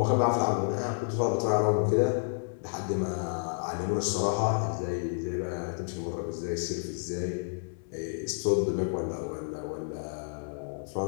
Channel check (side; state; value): right; silent; 58 dB below the other